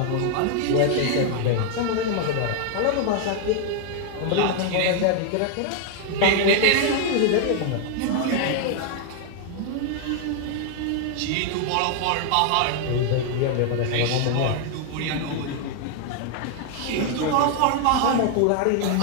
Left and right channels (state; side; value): different; both; correlation 0.00